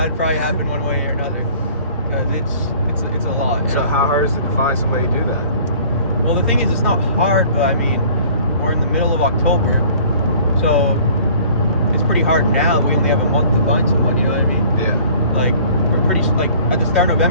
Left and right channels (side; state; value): both; inverted; correlation -0.51